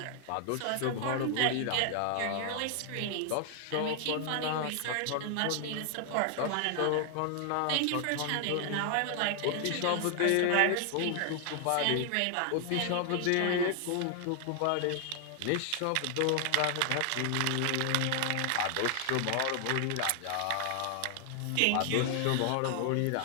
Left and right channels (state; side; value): different; both; correlation 0.00